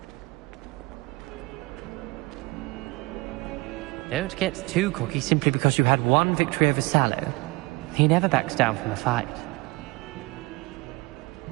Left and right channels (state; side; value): quieter; left; 24.1 dB